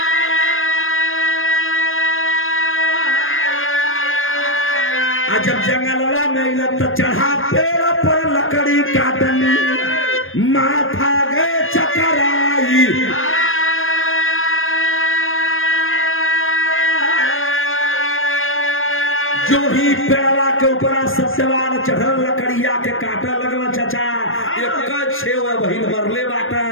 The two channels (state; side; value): late; right; 0.59 ms